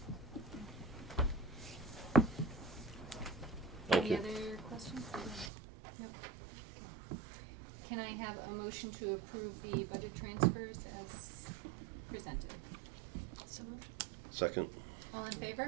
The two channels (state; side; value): drops out; left; at 5.5 s